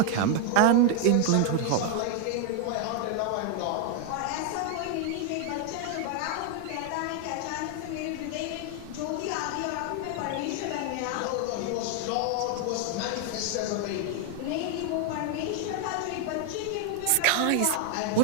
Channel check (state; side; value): different; both; correlation 0.00